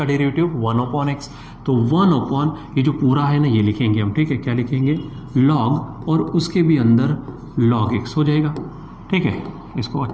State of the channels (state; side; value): identical; both; correlation 1.00